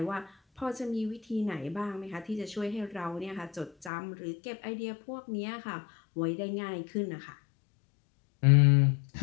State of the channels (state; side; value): drops out; right; at 3.9 s